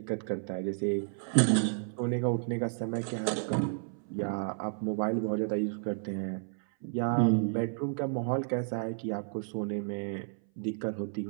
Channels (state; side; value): silent; left; 57 dB below the other